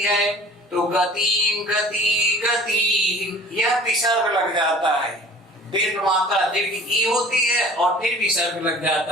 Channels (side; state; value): both; normal; correlation 0.46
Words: है, तो गति, गति, गति, यह विसर्ग लग जाता है, दीर्घ मात्रा दीर्घ ई होती है और फिर विसर्ग लग